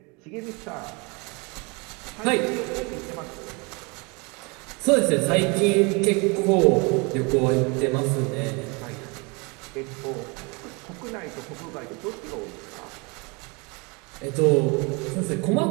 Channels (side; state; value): left; quieter; 29.6 dB